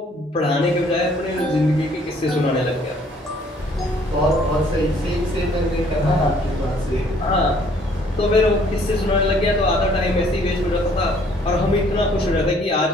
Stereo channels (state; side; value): normal; both; correlation 0.61